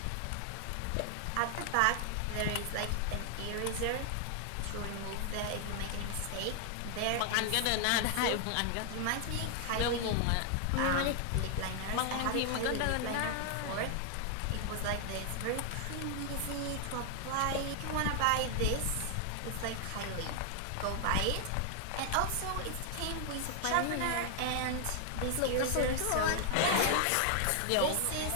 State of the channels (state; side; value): different; both; correlation 0.00